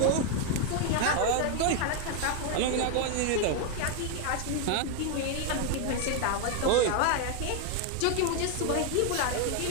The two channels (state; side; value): different; both; correlation 0.01